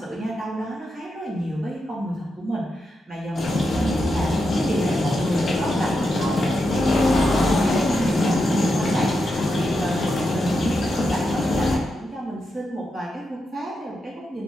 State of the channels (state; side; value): normal; both; correlation 0.86